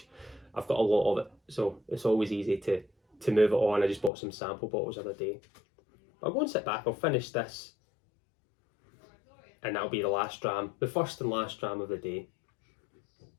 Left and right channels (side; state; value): right; drops out; at 4.1 s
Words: I've got a lot of it, so it's always easy to move it on. I just bought some sample bottles the other day. I'll go and sit back, I'll finish this, and that'll be the last dram, the first and last dram of the day.